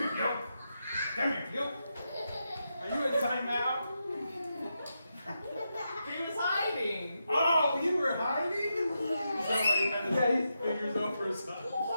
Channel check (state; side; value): inverted; both; correlation -0.86